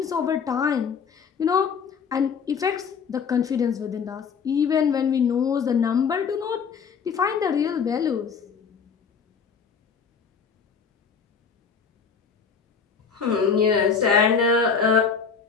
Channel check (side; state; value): right; quieter; 6.2 dB